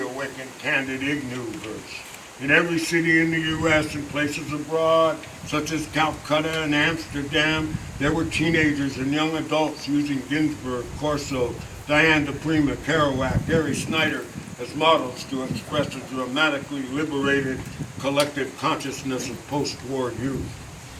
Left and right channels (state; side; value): identical; both; correlation 1.00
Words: candid Ignu verse. In every city in the U.S. and places abroad, such as Calcutta and Amsterdam, there were teenagers and young adults using Ginsberg, Corso, Diane DePrima, Kerouac, Gary Snyder as models to express a dramatically liberated collective consciousness of post-war youth,